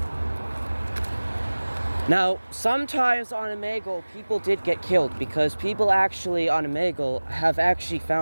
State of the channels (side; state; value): both; inverted; correlation -1.00